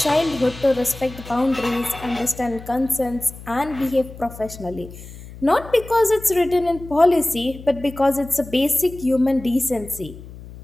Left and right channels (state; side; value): noise; left; hum, 16 dB below the sound